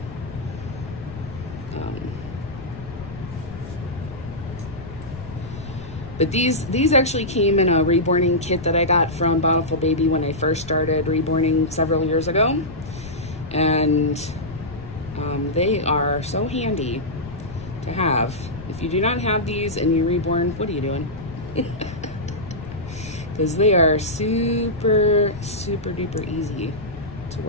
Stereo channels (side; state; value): left; noise; rumble, 14 dB below the sound